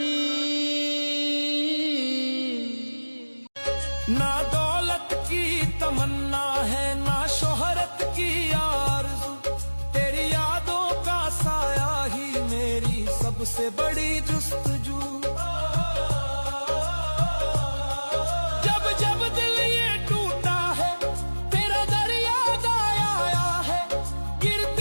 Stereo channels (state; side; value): inverted; both; correlation -1.00